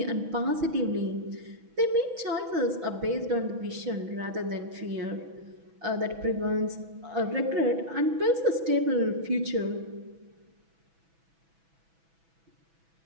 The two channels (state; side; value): late; left; 6.1 ms